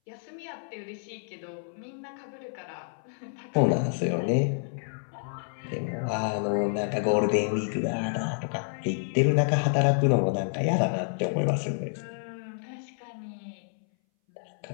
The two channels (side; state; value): right; silent; 59 dB below the other